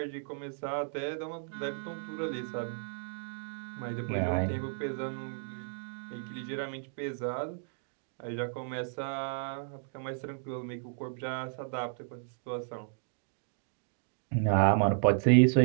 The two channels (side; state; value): left; silent; digital silence